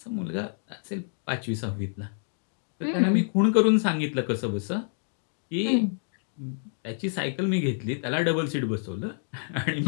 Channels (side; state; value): right; silent; digital silence